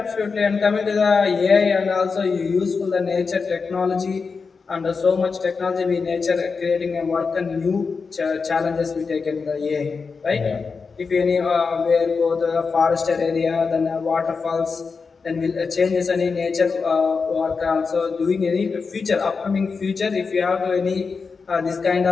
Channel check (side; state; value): right; quieter; 4.9 dB